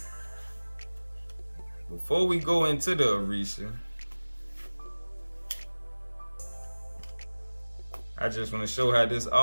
Before we go into the Orisha, I just want to show how this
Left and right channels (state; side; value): inverted; both; correlation -1.00